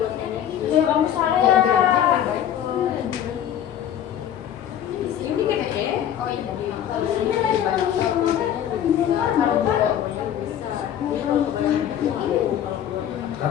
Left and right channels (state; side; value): quieter; right; 10.3 dB